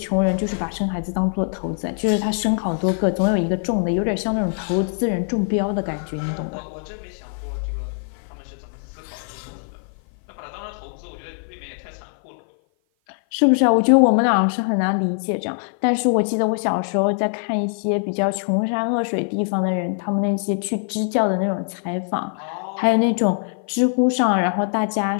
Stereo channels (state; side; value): silent; right; 55 dB below the other